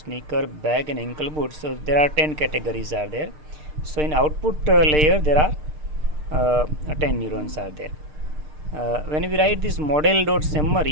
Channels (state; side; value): late; left; 6.6 ms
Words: bag, and ankle boots. So there are 10 categories are there. So in output layer there are 10 neurons are there. When we write this model dot